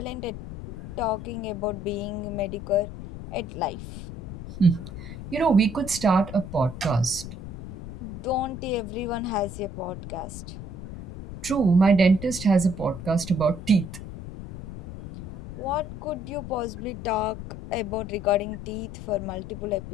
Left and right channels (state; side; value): noise; left; rumble, 10 dB below the sound